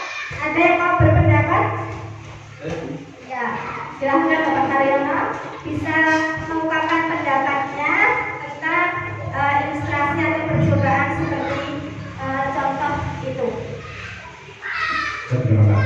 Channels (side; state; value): both; identical; correlation 1.00